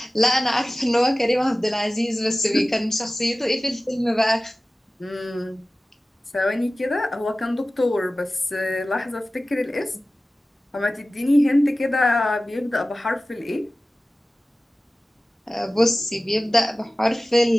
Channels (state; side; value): normal; both; correlation 0.96